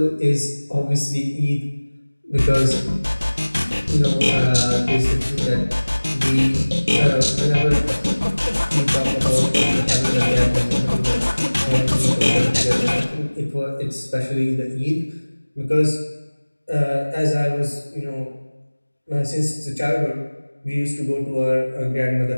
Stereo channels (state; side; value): inverted; both; correlation -1.00